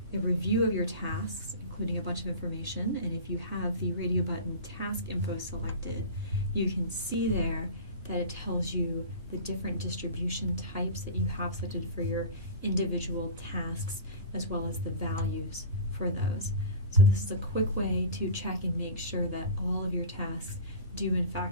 a review of your tasks, including a bunch of information. And if you have the radio button task info selected, you can see there that it tells you the different distribution types that you have selected for your individual tasks, as well as the values for those. So this is a quick way to check and make sure that all of your tasks do in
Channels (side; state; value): both; inverted; correlation -0.31